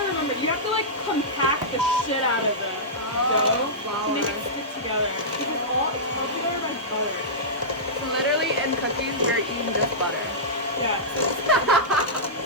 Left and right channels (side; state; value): both; normal; correlation -0.16